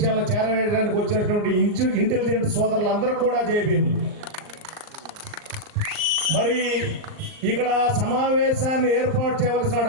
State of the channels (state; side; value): late; left; 39 ms